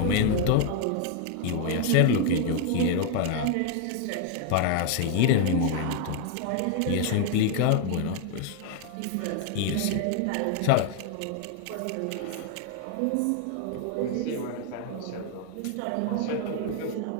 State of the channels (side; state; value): both; different; correlation 0.00